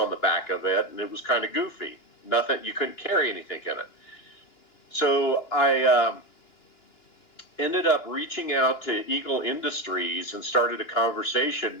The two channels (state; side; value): late; right; 2.9 ms